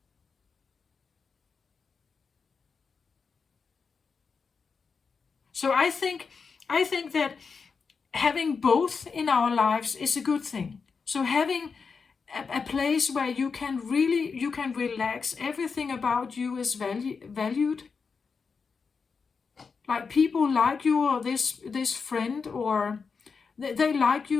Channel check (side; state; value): right; quieter; 5.3 dB